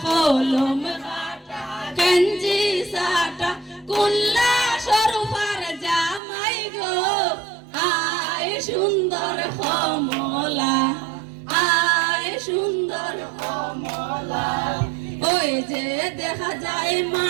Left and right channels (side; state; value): left; drops out; at 6.2 s